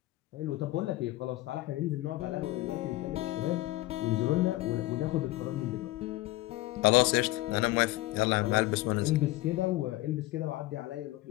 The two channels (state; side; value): quieter; right; 18.2 dB